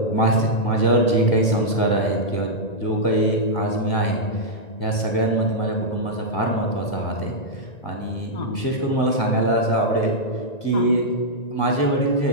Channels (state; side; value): late; right; 1.9 ms